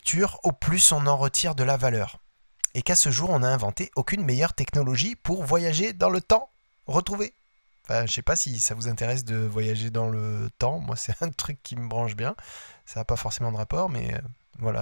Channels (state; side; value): inverted; both; correlation -1.00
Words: au plus on en retire de la valeur. Et qu'à ce jour, on n'a inventé aucune meilleure technologie pour voyager dans le temps. Retrouver. Enfin, je sais pas si ça vous intéresse de voyager dans le temps. Moi, c'est un truc qui me branche bien. Ça n'a pas forcément de rapport, mais...